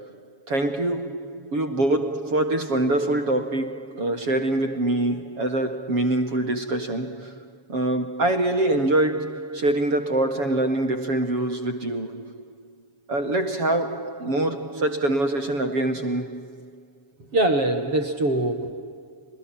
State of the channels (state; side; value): late; left; 7.2 ms